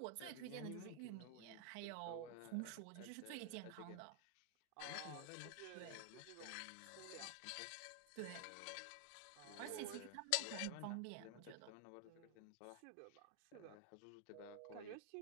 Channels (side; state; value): both; different; correlation 0.00